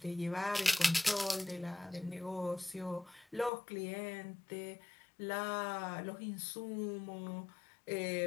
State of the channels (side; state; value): right; drops out; at 3.5 s